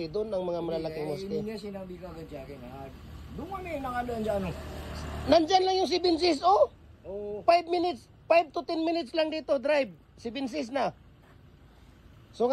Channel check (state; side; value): identical; both; correlation 1.00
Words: doon, ang mga malalaking muske. Hindi niya sinabi ka agad sa akin. Doon kami nakadaan sa ano. Nandyan lang yung si Binsis, oh! Oo. 5 minutes, 5 to 10 minutes lang dito, drive. Si Binsis na. So